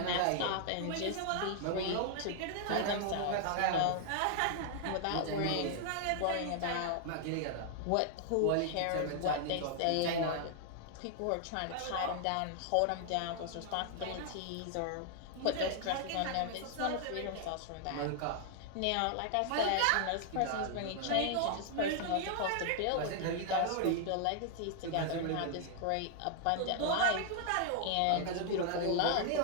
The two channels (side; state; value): both; different; correlation 0.00